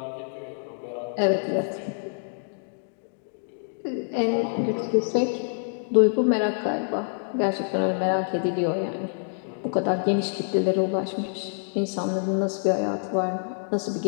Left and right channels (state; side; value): silent; right; digital silence